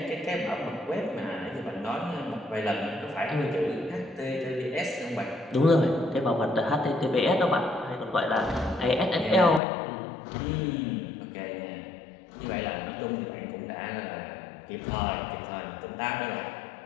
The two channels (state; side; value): drops out; right; at 9.6 s